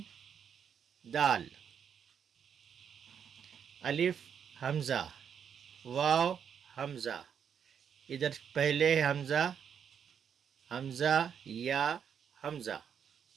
دال. الف حمزہ، واو حمزہ، ادھر پہلے ہے حمزہ، حمزہ یا حمزہ،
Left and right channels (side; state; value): left; quieter; 7.8 dB